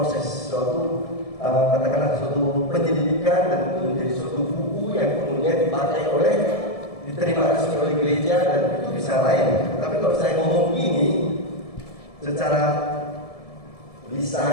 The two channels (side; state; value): right; late; 1.7 ms